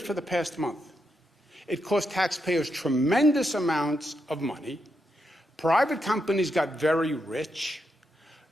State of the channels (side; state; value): both; normal; correlation 0.83